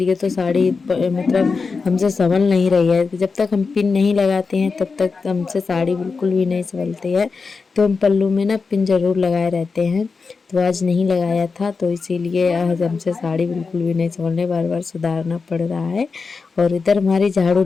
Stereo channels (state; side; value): quieter; right; 4.7 dB